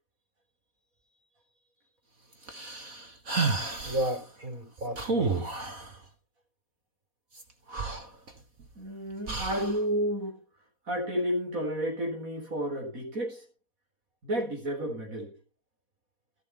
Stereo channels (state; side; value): late; left; 4.1 ms